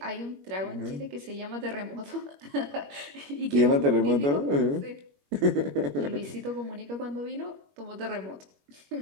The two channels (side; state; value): left; late; 21 ms